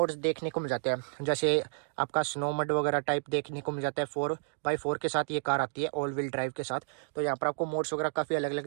देखने को मिल जाते हैं, जैसे आपका स्नो मड वगैरह टाइप देखने को मिल जाता है। 4x4 के साथ ये कार आती है, ऑल व्हील ड्राइव के साथ। तो यहाँ पर आपको मोड्स वगैरह काफ़ी अलग अलग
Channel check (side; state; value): left; silent; digital silence